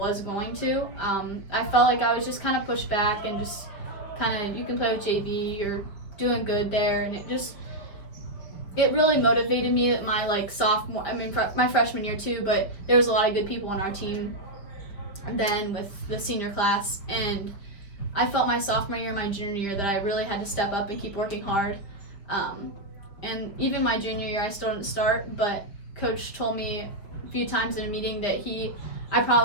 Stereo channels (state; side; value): late; right; 5.3 ms